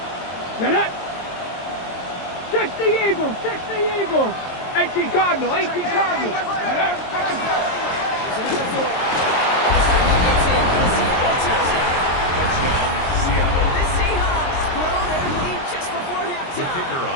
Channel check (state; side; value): late; right; 22 ms